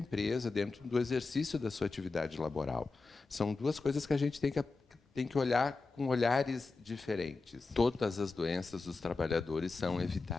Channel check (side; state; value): right; quieter; 3.9 dB